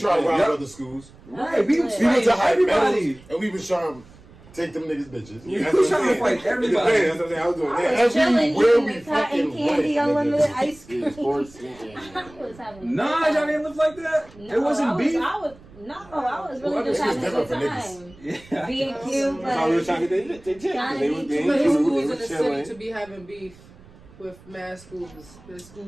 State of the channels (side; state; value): right; noise; rumble, 23 dB below the sound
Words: to rob Yep. other schools. Right, we was We went to High everybody. Meadows and we was trying to take them niggas bitches. We was trying to fight everybody. That's what I'm saying. I was doing I that. was chilling, Everywhere eating we the cotton fucking candy, went, unlimited nigga. ice cream. yeah, sports. I was having a Nah, good y'all time. didn't live like that. No, It wasn't beef. I was really just It was having a different good for niggas. time. Yeah. Being cute, That's how we were like, trying to get they Johnny They B. was Too being Too many cute. schools They in the was city chilling. to be having beef with mad schools. There's